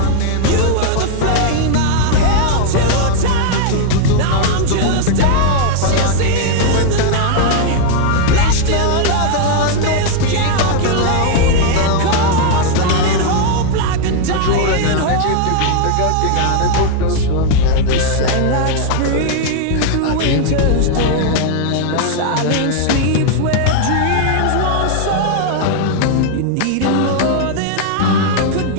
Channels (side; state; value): both; different; correlation 0.00